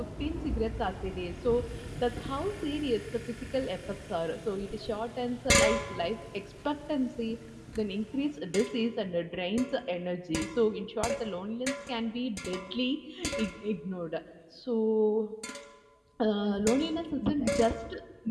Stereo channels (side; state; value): both; identical; correlation 1.00